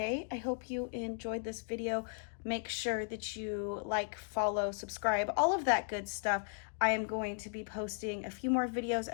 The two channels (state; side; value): silent; right; digital silence